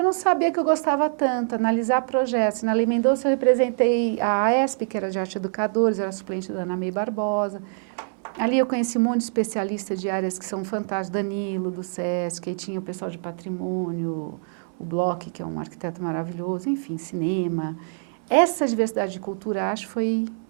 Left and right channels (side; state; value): left; silent; digital silence